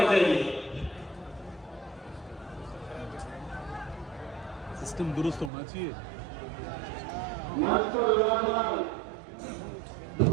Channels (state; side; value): drops out; left; at 5.5 s